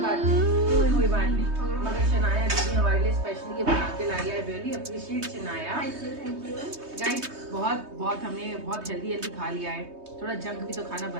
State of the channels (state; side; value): late; left; 3.2 ms